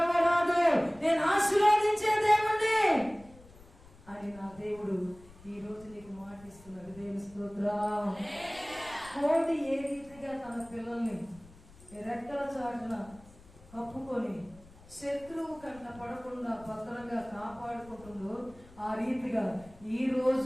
రాదు. నేను ఆశీర్వదించే దేవుణ్ణి అని నా దేవుడు ఈ రోజు నీకు మాటిస్తున్నాడు. దేవుని స్తోత్రం. కోడి ఏ రీతిగా తన పిల్లల్ని రెక్కల చాటున కప్పుకొని శత్రువు కంట పడకుండా భద్రంగా కాపాడుకుంటుందో ఆ రీతిగా ఈ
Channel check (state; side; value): noise; left; rumble, 23 dB below the sound